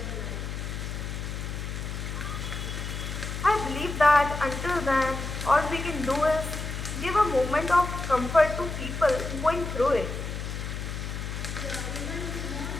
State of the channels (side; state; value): left; noise; hum, 5 dB below the sound